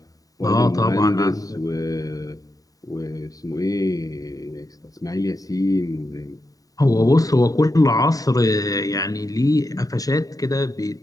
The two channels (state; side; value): late; right; 0.17 ms